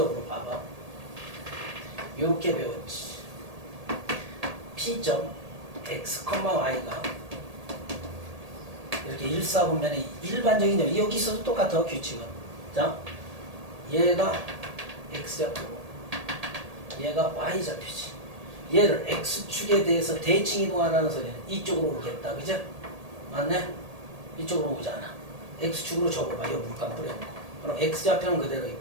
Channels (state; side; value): late; left; 1.8 ms